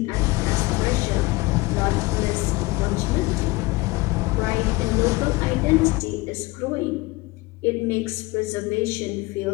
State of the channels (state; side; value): quieter; right; 22.1 dB